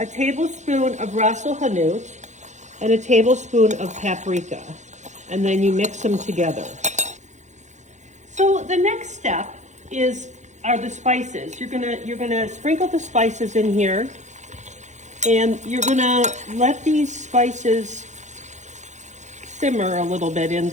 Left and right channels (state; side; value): late; left; 0.34 ms